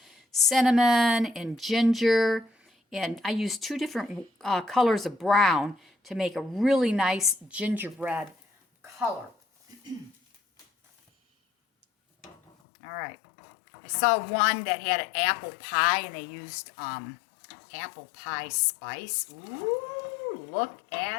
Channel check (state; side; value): drops out; right; at 12.5 s